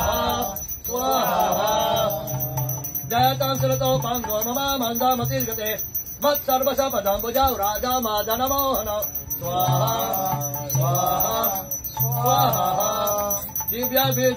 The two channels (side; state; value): both; identical; correlation 1.00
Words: Swaha Jayatam Surato Pango Mama Manda Matilgate Vat Sarvasa Padam Bujau Raja Madana Mohana Swaha Swaha Swaha Divya